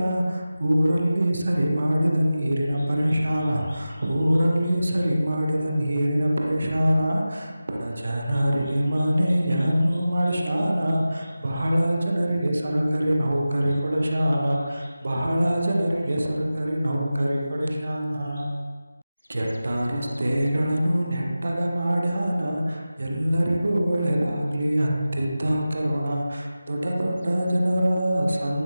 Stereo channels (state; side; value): inverted; both; correlation -0.95